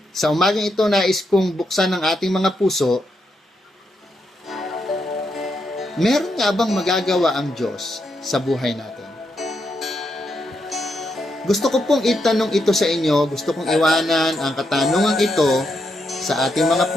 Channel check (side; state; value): both; normal; correlation 0.81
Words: Sa umagang ito, nais kong buksan ang ating mga puso. Meron nga bang magagawa ang Diyos sa buhay natin? Gusto ko pong itanong ito sa inyo, gusto kong iwanan ang katanungan ito sa ating mga